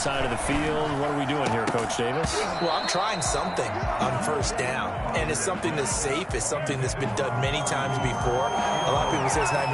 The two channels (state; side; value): identical; both; correlation 1.00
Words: of the field. What are we doing here, Coach Davis? Well, I'm trying something on 1st down. And it's something that's safe. It's something that's been done many times before. A lot of people say it's not